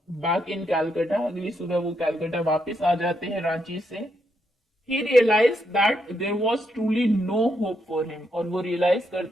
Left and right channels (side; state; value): both; normal; correlation 0.79